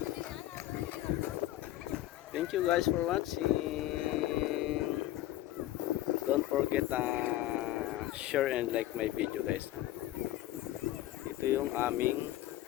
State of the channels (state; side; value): quieter; right; 14.8 dB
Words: Thank you guys for watching. Don't forget share and like my video guys. Ito yung aming